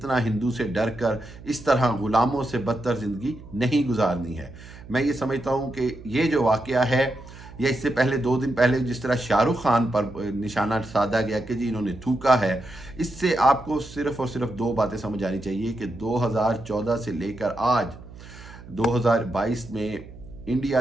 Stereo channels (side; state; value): right; noise; hum, 17 dB below the sound